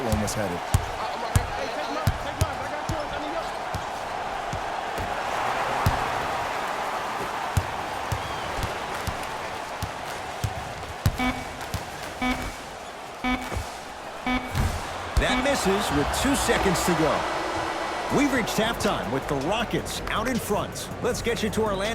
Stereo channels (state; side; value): identical; both; correlation 1.00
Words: one was headed. That misses with 2 seconds to go. We've reached halftime with the Rockets out in front. Let's get you to